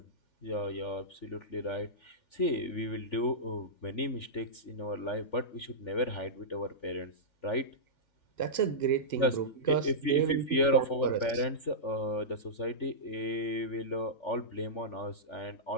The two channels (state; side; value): late; right; 3.4 ms